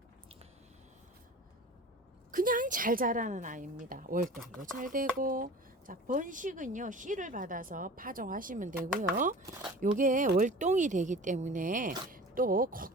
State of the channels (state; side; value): normal; both; correlation 0.39